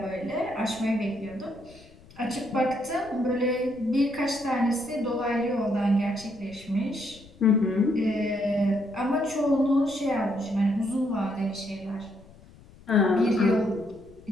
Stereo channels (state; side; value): noise; left; rumble, 23 dB below the sound